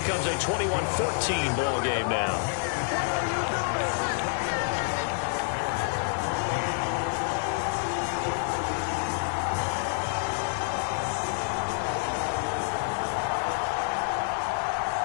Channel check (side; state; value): right; silent; digital silence